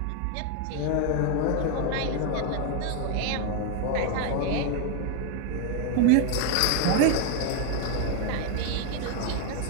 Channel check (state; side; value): different; both; correlation 0.01